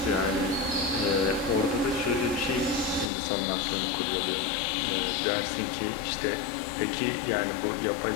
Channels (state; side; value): drops out; right; at 3.1 s